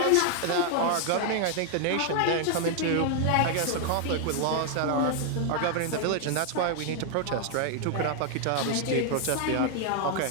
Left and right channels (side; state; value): both; different; correlation 0.00